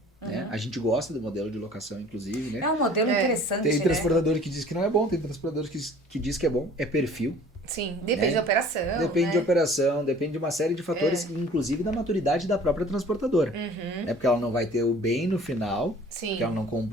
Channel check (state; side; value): normal; both; correlation 0.49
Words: Né? A gente gosta do modelo de locação, inclusive. Né? É um modelo interessante, Tem né? transportador que diz que não é bom, tem transportador que diz que é bom. É perfil. Sim, depende Né? da operação, Depende né? de operação, depende de uma série de fatores, inclusive da maturidade da própria transportadora. Né? Porque ela não vai ter o bem no final, Sim. que ela não